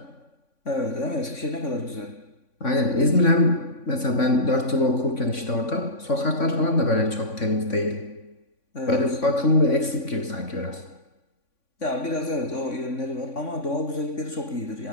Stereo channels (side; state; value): right; late; 3.5 ms